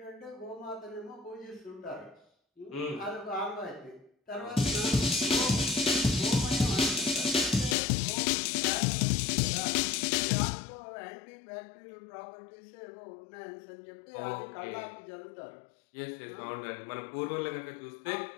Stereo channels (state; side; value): drops out; right; at 7.8 s